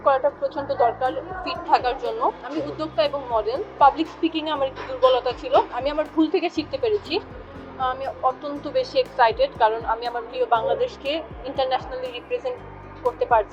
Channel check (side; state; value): both; identical; correlation 1.00